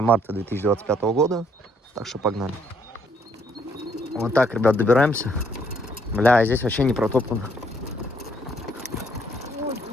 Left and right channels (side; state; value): both; normal; correlation 0.68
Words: марта 2025 года. Так что погнали. Вот так, ребят, добираемся. Бля, здесь вообще не протоптано.